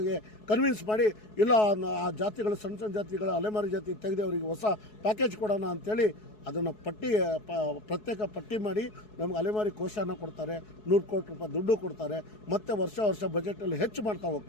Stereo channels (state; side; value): late; right; 4.7 ms